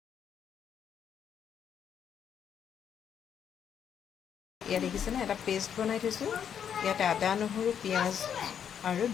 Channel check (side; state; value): right; quieter; 8.4 dB